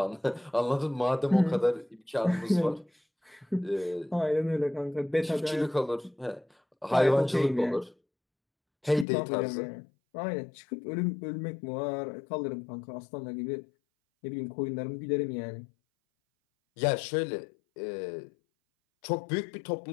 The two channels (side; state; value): right; drops out; at 9.1 s